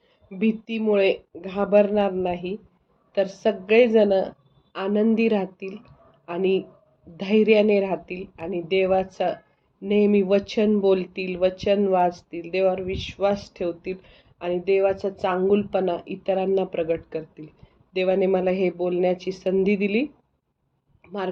भीतीमुळे घाबरणार नाही, तर सगळेजण आनंदी राहतील आणि धैर्याने राहतील आणि देवाचं नेहमी वचन बोलतील, वचन वाचतील, देवावर विश्वास ठेवतील आणि देवाचा चांगुलपणा इतरांना प्रगट करतील. देवाने मला हे बोलण्याची संधी दिली,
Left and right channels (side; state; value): both; identical; correlation 1.00